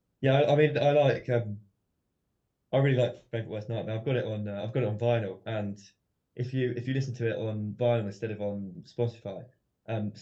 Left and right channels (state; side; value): identical; both; correlation 1.00